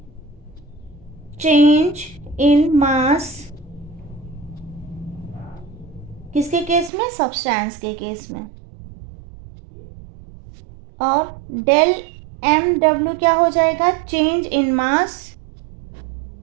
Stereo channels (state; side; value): drops out; left; at 6.9 s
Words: चेंज इन मास किसके केस में? सब्सटेंस के केस में। और डेल एम डब्ल्यू क्या हो जाएगा? Change in mass.